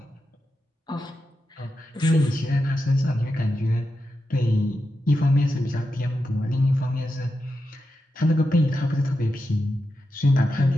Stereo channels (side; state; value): both; normal; correlation 0.89